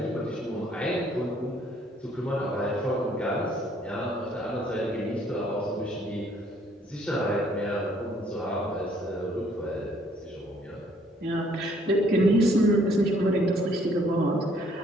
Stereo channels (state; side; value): normal; both; correlation 0.63